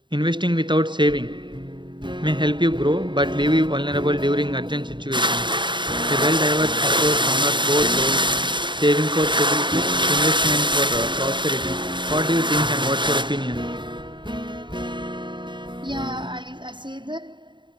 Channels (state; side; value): late; left; 0.23 ms